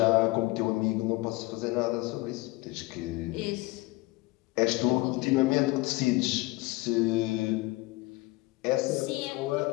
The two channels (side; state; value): right; quieter; 22.0 dB